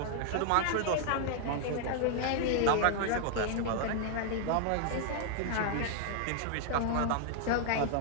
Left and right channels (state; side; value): different; both; correlation 0.00